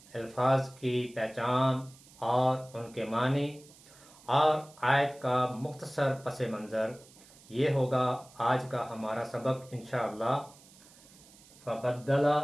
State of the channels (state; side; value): noise; right; hiss, 24 dB below the sound